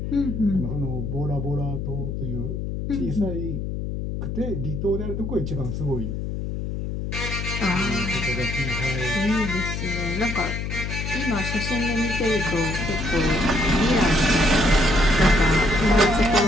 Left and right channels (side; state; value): left; noise; hum, 4 dB below the sound